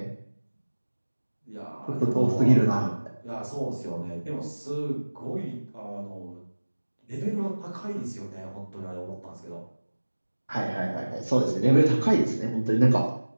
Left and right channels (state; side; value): inverted; both; correlation -1.00